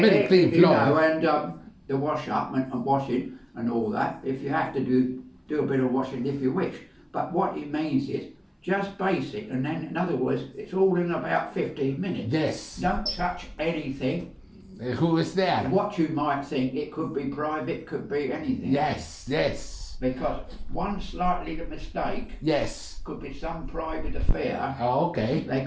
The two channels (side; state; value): both; identical; correlation 1.00